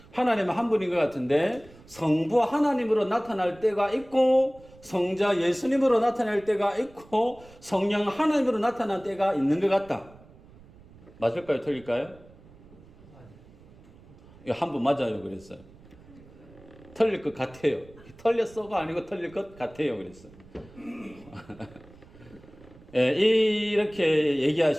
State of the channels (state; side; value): noise; right; rumble, 23 dB below the sound